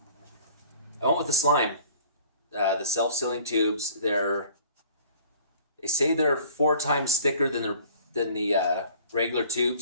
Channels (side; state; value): both; inverted; correlation -0.50